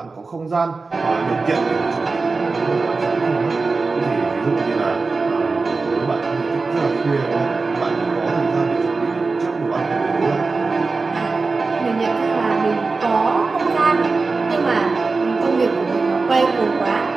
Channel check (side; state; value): left; quieter; 4.0 dB